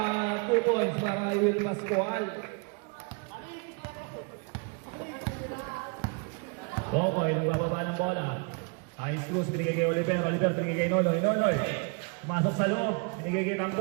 2 points para kay Will Pascual. Boboy, nagbababa ng bola. High Cruz, binigay kay Oliver. Oliver, binigay kay Nonoy. Nonoy, pumasok sa loob. Binigay kay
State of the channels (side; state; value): left; quieter; 34.6 dB